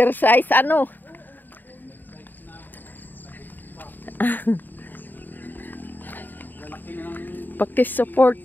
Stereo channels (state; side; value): late; right; 0.090 ms